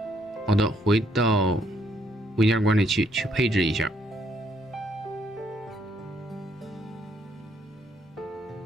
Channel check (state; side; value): normal; both; correlation 0.71